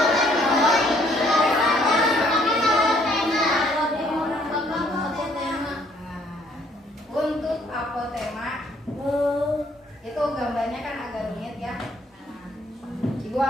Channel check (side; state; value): both; normal; correlation 0.65